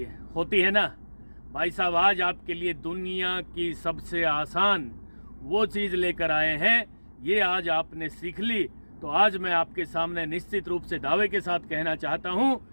है ना भाई साहब। आज आपके लिए दुनिया की सबसे आसान वो चीज़ लेकर आए हैं। ये आज आपने सीख ली तो आज मैं आपके सामने निश्चित रूप से दावे के साथ कहना चाहता हूँ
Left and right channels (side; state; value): both; inverted; correlation -1.00